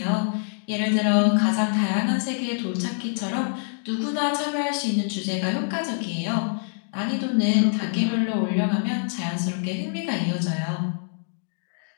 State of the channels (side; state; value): right; silent; digital silence